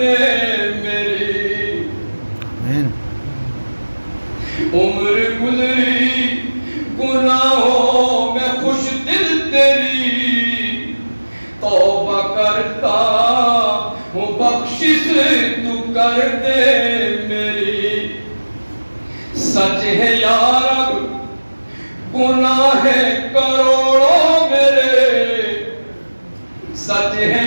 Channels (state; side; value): inverted; both; correlation -1.00